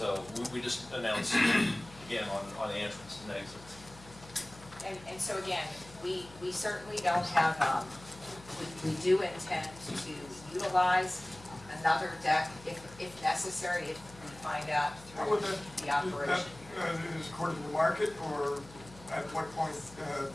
we just announced again on the entrance and exits. And so again, we certainly don't have, we do intend to utilize another deck if necessary, if we find out How would through that, the operation. is according to market, or at what point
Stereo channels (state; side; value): noise; left; hum, 20 dB below the sound